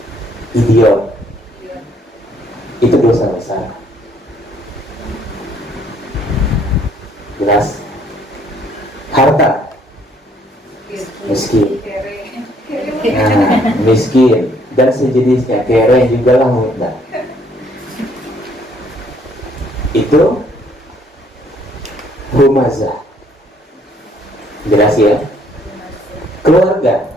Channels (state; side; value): normal; both; correlation 0.64